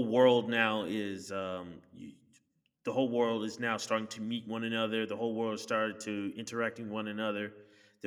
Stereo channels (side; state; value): both; identical; correlation 1.00